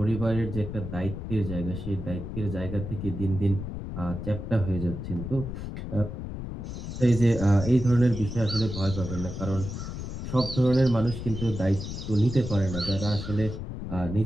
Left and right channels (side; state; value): left; noise; rumble, 7 dB below the sound